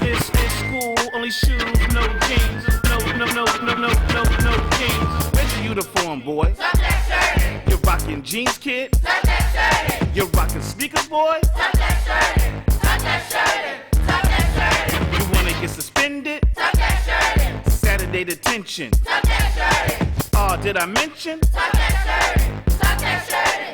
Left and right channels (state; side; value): identical; both; correlation 1.00